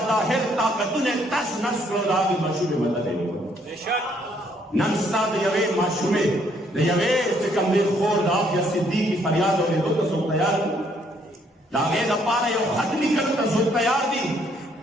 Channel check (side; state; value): both; normal; correlation 0.68